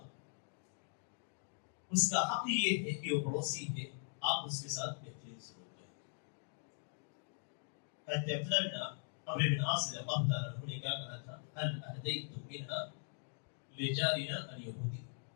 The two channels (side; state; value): right; silent; digital silence